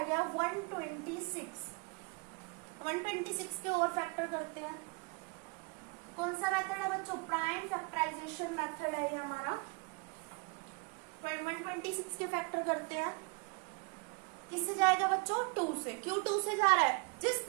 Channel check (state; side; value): quieter; left; 31.0 dB